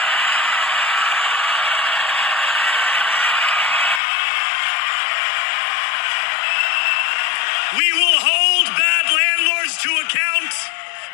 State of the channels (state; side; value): drops out; right; at 4.0 s